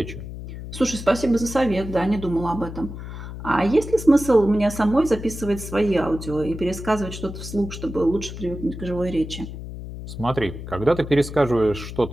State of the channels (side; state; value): left; noise; hum, 10 dB below the sound